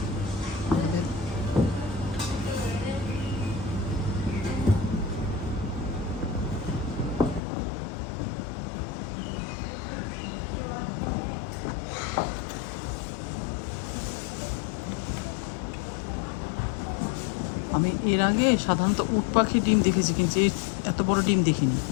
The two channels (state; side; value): drops out; right; at 7.4 s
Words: আমি এর আগে সাধারণত উট পাখির ডিম দেখেছি, কিন্তু এত বড় ডিম দেখিনি,